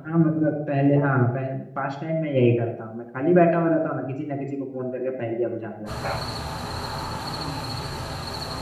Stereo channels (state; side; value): identical; both; correlation 1.00